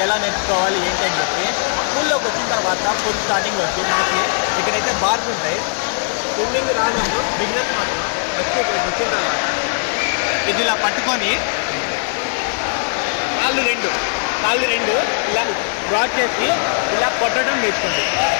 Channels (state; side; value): silent; right; digital silence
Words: ఎలా నేర్చుకోవాలి ఏంటి అని చెప్పి పూల్లోకి వచ్చిన తర్వాత ఫుల్ స్టార్టింగ్ వచ్చి మనకి ఇక్కడైతే బార్స్ ఉంటాయి. స్విమ్మింగ్ రానప్పుడు బిగినర్స్ మాత్రం వచ్చిన తర్వాత ఇది ఇలా పట్టుకొని కాళ్ళు రెండు ఇలా బ్రాడ్ చేసి ఇలా కొట్టడం నేర్చుకోండి.